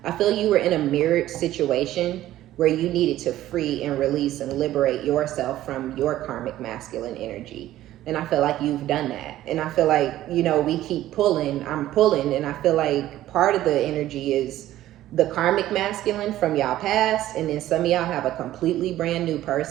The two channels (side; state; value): left; quieter; 14.1 dB